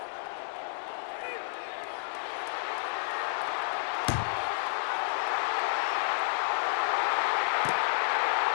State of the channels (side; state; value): right; silent; digital silence